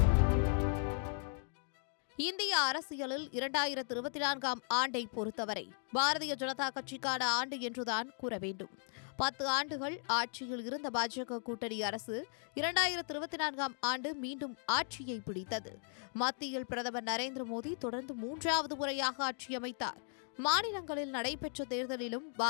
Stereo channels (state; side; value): silent; right; 53 dB below the other